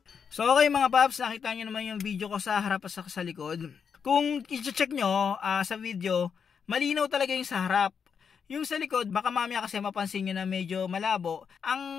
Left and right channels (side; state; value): right; quieter; 6.6 dB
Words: So okay mga paps, nakita nyo naman yung video ko sa harap at sa likod. Kung i-check nyo sa video, malinaw talaga yung sa harap. Yung sa likod, baka mamaya kasi mapansin nyo na medyo malabo.